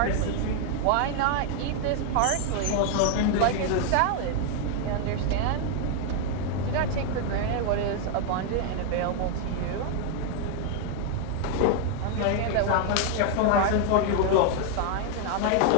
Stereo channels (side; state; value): both; different; correlation 0.00